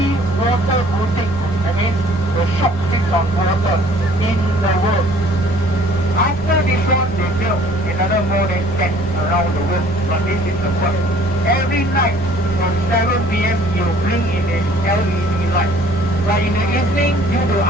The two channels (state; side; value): noise; right; rumble, 14 dB below the sound